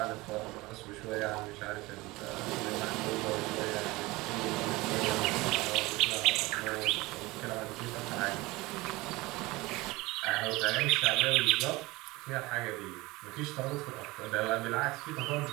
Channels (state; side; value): quieter; left; 21.4 dB